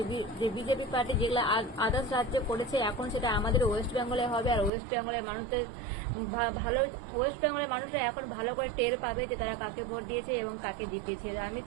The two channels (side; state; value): left; drops out; at 4.7 s